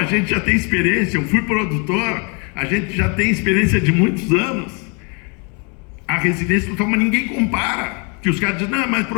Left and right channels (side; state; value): right; quieter; 34.4 dB